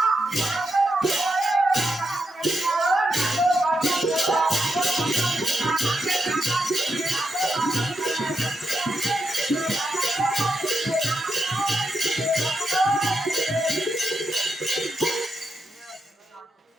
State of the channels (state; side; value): normal; both; correlation 0.84